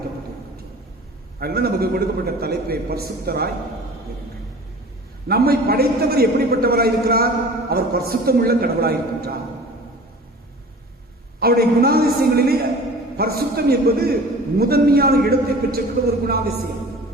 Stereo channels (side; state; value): both; normal; correlation 0.42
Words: அதனால நமக்கு கொடுக்கப்பட்ட தலைப்பை பரிசுத்தராய் இருங்கள். நம்மை படைத்தவர் எப்படிப்பட்டவராய் இருக்கிறார்? அவர் பரிசுத்தம் உள்ள கடவுளாய் இருக்கின்றார். அவருடைய குணாதிசயங்களிலே பரிசுத்தம் என்பது முதன்மையான இடத்தை பெற்றிருக்கிற ஒரு குணாதிசயம்.